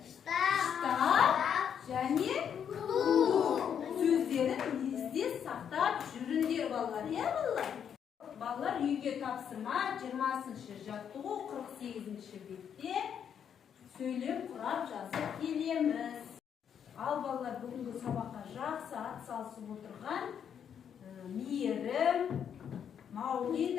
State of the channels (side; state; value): right; quieter; 8.2 dB